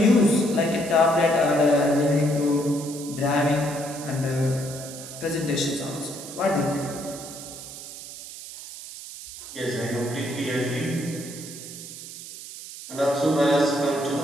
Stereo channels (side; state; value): right; noise; hiss, 12 dB below the sound